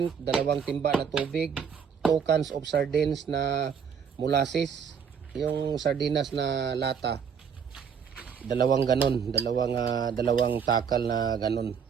2 timba na tubig, 2 cans of sardines na molasses, yung sardinas na lata. 2 ganon, 2 takal na ganon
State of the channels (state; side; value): quieter; left; 6.9 dB